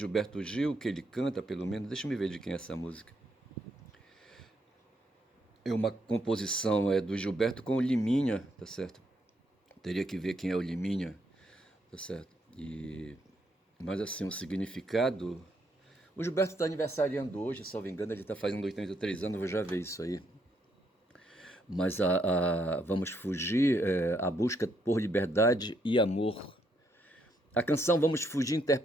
Gil, que ele canta, pelo menos, deixa eu me ver de quem é essa música. É uma composição do Gilberto com o Liminha, tá certo? Teria que ver quem é o Liminha, tá certo? Mas assim, o significado. O Gilberto está aniversariando hoje, se não me engano, ele está fazendo 83 anos, eu vou já ver isso aí. Mas Vamos Fugir, a busca por liberdade e amor. A canção Vamos Fugir,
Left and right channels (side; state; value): both; normal; correlation 0.75